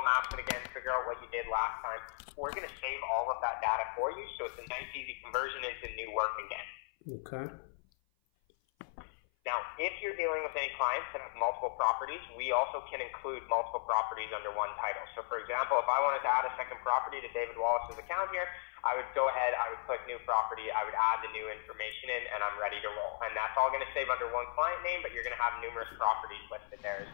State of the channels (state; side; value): silent; right; 54 dB below the other